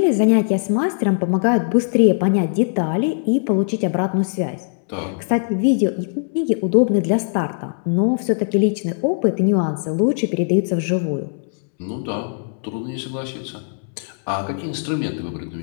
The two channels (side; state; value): right; silent; 66 dB below the other